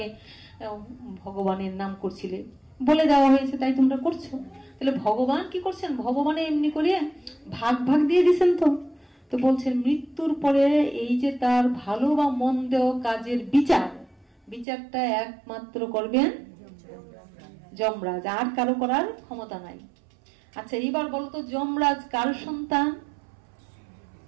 ভগবানের নাম করছিলে, বলে দেওয়া হয়েছে, তাই তোমরা করছো। তাহলে ভগবান কি করছেন? ভগবানে এমনি করে ভাগ ভাগ দিয়ে দিচ্ছেন। তো বলছেন মৃত্যুর পরে এই যে তার ভালো বা মন্দ কাজের বিচারটা একমাত্র করবেন যমরাজ, আর কারো করার ক্ষমতা নাই। আচ্ছা এইবার বলতো যমরাজ কার সন্তান?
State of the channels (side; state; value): left; drops out; at 14.7 s